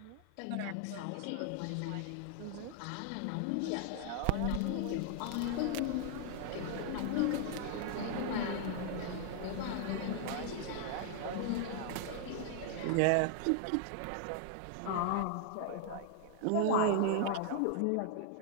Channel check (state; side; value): different; both; correlation 0.00